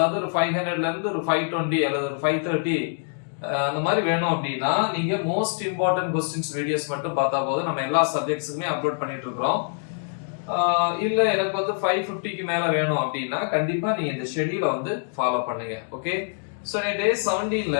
ஒரு 500ல இருந்து ஒரு 520 அல்லது ஒரு 530 அந்த மாதிரி வேணும் அப்படின்னா நீங்க மோஸ்ட் இம்பார்ட்டன்ட் கொஸ்டின்ஸ் வீடியோஸ் மட்டும் பார்த்தா போதும். நம்ம எல்லா சப்ஜெக்ட்ஸுக்குமே அப்லோட் பண்ணிட்டு இருக்கிறோம். இல்ல எனக்கு வந்து 550க்கு மேல வேணும் அப்படின்னா கண்டிப்பா நீங்க இந்த ஷெட்யூலை வந்து ஃபாலோ பண்ணுங்க. ஓகே, சோ நீ டே 17ல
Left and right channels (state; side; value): silent; right; digital silence